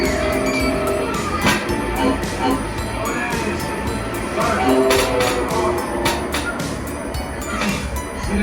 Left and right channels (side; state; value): both; identical; correlation 1.00